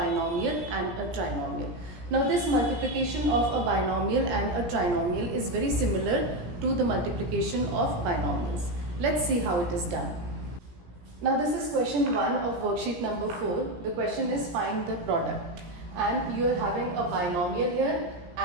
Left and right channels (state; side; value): late; left; 17 ms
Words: and a trinomial. Now, this multiplication of a binomial and a trinomial is very similar to the multiplication of binomials. Let's see how it is done. Now, this is question 1 of worksheet number 4. The question is find the product. And you are having a binomial here